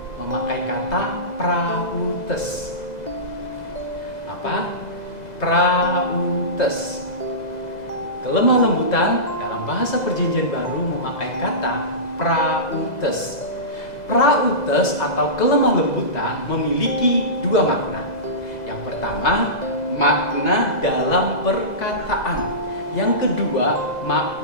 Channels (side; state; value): right; late; 2.0 ms